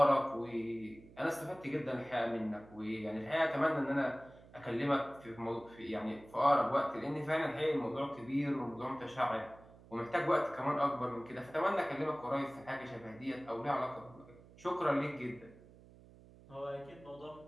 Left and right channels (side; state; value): right; noise; hum, 22 dB below the sound